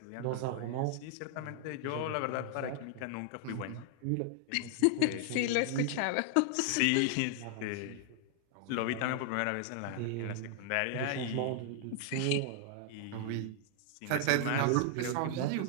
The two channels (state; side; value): different; both; correlation 0.00